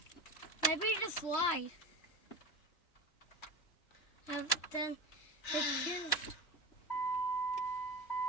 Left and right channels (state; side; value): late; right; 3.2 ms